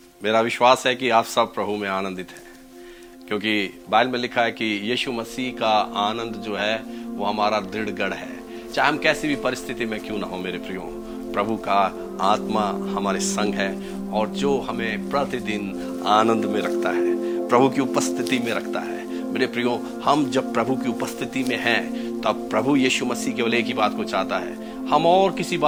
मेरा विश्वास है कि आप सब प्रभु में आनंदित हैं, क्योंकि बाइबल में लिखा है कि यीशु मसीह का आनंद जो है वो हमारा दृढ़ गढ़ है। चाहे हम कैसी भी परिस्थिति में क्यों ना हो मेरे प्रियो, प्रभु का आत्मा हमारे संग है और जो हमें प्रतिदिन आनंद में रखता है, प्रभु की उपस्थिति में रखता है। मेरे प्रियो, हम जब प्रभु की उपस्थिति में हैं तब प्रभु यीशु मसीह केवल एक ही बात को चाहता है, हम और किसी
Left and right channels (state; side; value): identical; both; correlation 1.00